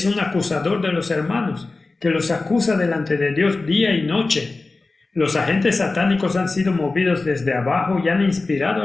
un acusador de los hermanos, que los acusa delante de Dios día y noche. Los agentes satánicos han sido movidos desde abajo y han inspirado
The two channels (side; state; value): right; quieter; 3.5 dB